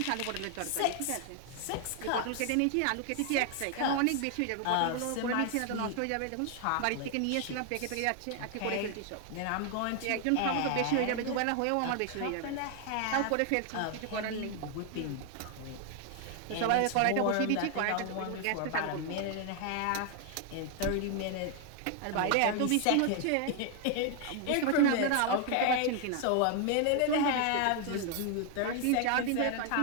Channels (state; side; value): different; both; correlation 0.00